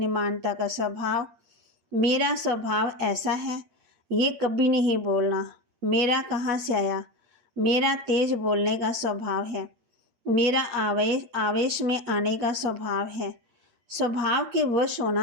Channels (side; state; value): left; late; 8.6 ms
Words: का स्वभाव। मेरा स्वभाव ऐसा है, ये कभी नहीं बोलना मेरा कहाँ से आया। मेरा तेज बोलने का स्वभाव है। मेरा आवेश में आने का स्वभाव है। स्वभाव के वश